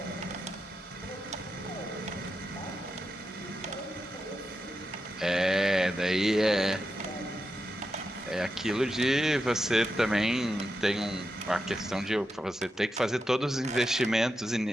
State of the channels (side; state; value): both; normal; correlation 0.88